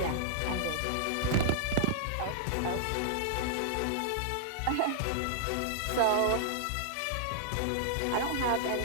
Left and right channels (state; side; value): different; both; correlation -0.01